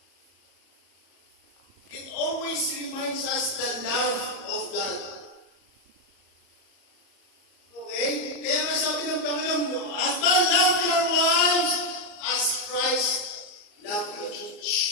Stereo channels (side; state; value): right; late; 34 ms